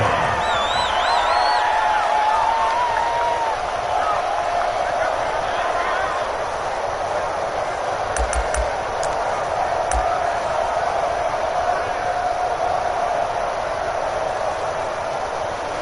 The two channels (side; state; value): both; identical; correlation 1.00